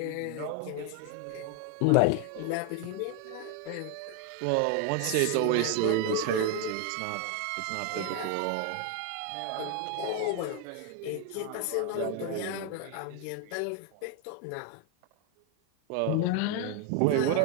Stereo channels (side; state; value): both; different; correlation 0.01